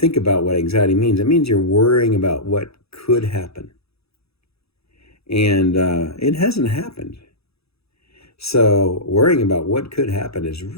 about what anxiety means, it means you're worrying about what could happen. And it hasn't happened. So worrying about what could happen is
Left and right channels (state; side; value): late; right; 0.78 ms